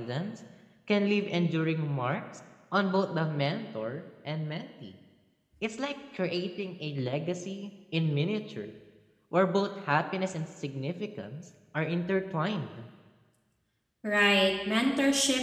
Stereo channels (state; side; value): identical; both; correlation 1.00